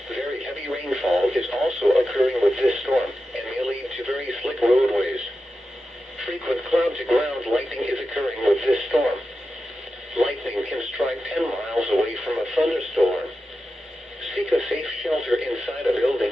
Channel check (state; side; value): normal; both; correlation 0.91